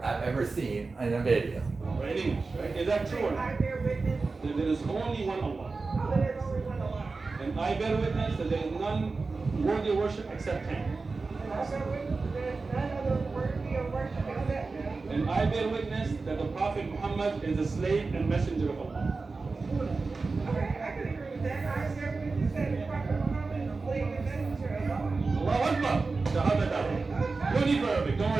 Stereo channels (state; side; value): quieter; left; 4.0 dB